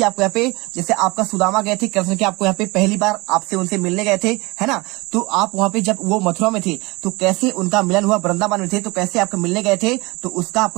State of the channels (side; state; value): left; quieter; 24.1 dB